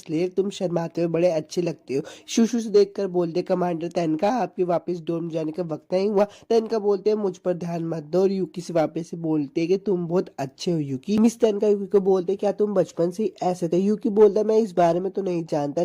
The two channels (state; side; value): identical; both; correlation 1.00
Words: तुम शर्माते हुए बड़े अच्छे लगते हो। शुशु से देखकर बोलते कमांडर तनका आपके वापस डोम जाने का वक्त नहीं हुआ। तनका बोलते हैं मुझ पर ध्यान मत दो और यूकी से वापस से बोलते हैं कि तुम बहुत अच्छे हो यूकी। मिस तनका यूकी को बोलते हैं क्या तुम बचपन से ही ऐसे थे। यूकी बोलता है मैं इस बारे में तो नहीं जानता,